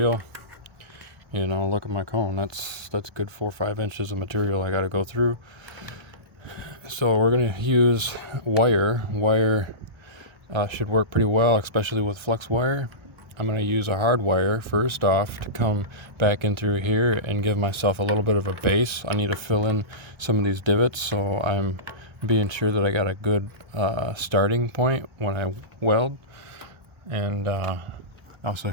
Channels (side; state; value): left; late; 1.3 ms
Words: You know, look at my cone. That's good 4 or 5 inches of material I got to go through. So we're gonna use wire. Wire should work pretty well, especially with flex wire. I'm going to use a hard wire first off to come back in through here and give myself a little bit of a base. I need to fill in some of these divots, so I'm being sure that I got a good starting point when I weld. And I also